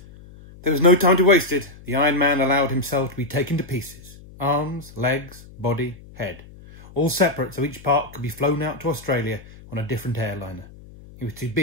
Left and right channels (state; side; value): noise; left; hum, 20 dB below the sound